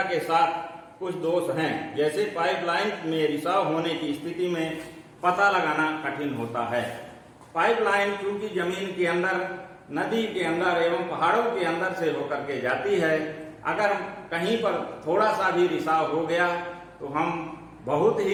के साथ कुछ दोष हैं, जैसे पाइपलाइन में रिसाव होने की स्थिति में पता लगाना कठिन होता है। पाइपलाइन चूंकि जमीन के अंदर, नदी के अंदर एवं पहाड़ों के अंदर से होकर के जाती है, अगर कहीं पर थोड़ा सा भी रिसाव हो गया तो हम बहुत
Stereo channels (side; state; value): both; identical; correlation 1.00